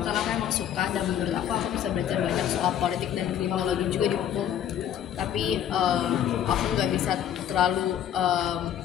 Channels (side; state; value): right; quieter; 10.0 dB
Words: karena aku emang suka, dan menurut aku bisa belajar banyak soal politik dan kriminologi juga di hukum. Tapi aku nggak bisa terlalu